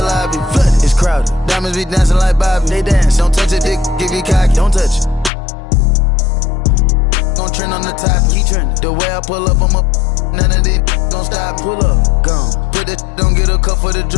lobby. Flooded. It's crowded. Diamonds be dancing like Bobby. They dance. Don't touch it, dick. Give you cocky. Don't touch it. Gon' trend on the top. Keep trending. The way I pull up, I'm up. None of these gon' stop. Pull up. Gone. Put that. Don't get a cup for the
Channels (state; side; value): drops out; right; at 5.3 s